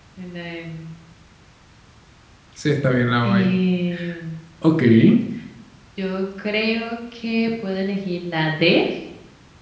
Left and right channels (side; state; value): both; identical; correlation 1.00